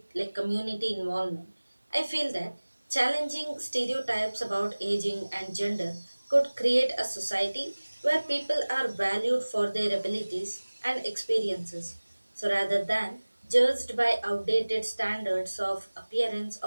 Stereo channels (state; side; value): inverted; both; correlation -1.00